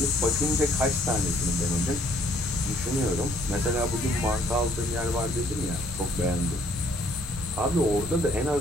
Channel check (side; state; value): both; normal; correlation 0.63